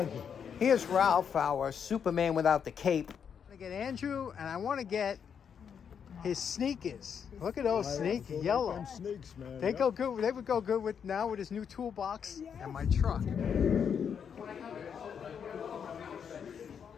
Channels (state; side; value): quieter; right; 7.4 dB